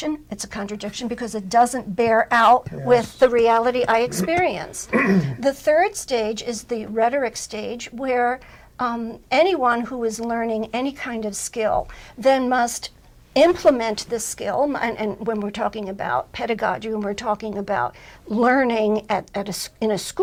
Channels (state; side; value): identical; both; correlation 1.00